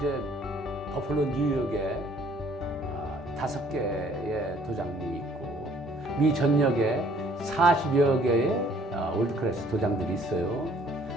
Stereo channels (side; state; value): both; normal; correlation 0.59